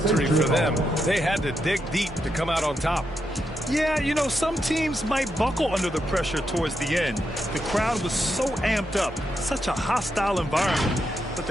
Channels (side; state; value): right; noise; hum, 18 dB below the sound